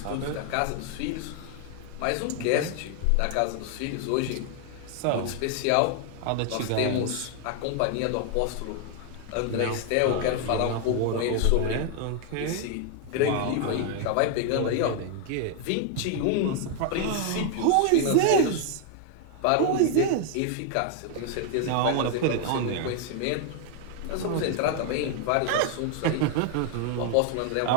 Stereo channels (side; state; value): both; different; correlation 0.00